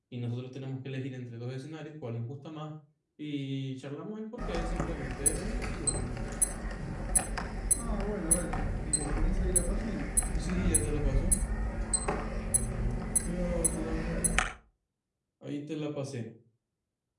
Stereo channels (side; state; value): both; identical; correlation 1.00